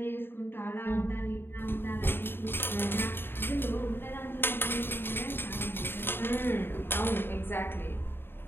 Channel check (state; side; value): late; right; 0.10 ms